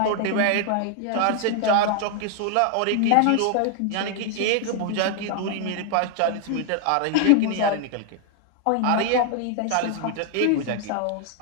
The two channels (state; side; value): different; both; correlation 0.00